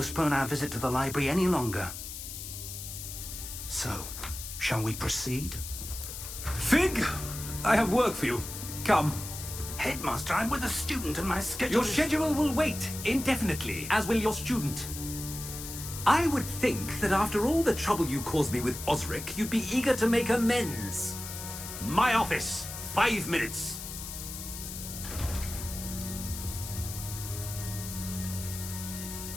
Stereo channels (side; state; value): left; noise; hiss, 9 dB below the sound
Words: our visit to the library any longer. So, shall we proceed? Fig, I have work for you. Come. Headmaster, I'm with a student and my schedule Your schedule will wait indefinitely, as will your student. I would think that after all the trouble you caused me with Osric, you'd be eager to make amends. My office, 5 minutes.